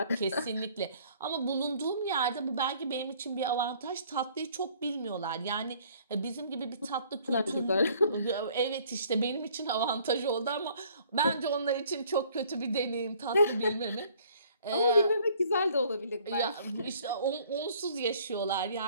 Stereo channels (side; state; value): both; inverted; correlation -0.58